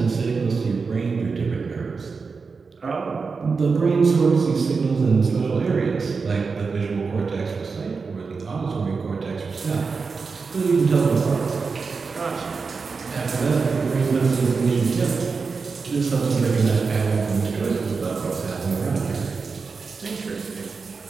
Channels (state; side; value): quieter; left; 4.8 dB